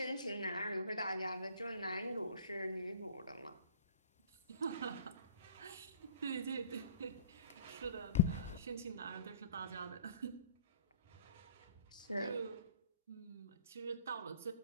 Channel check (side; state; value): both; inverted; correlation -0.47